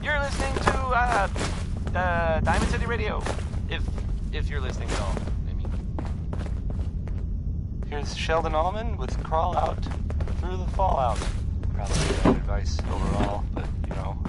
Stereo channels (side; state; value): both; identical; correlation 1.00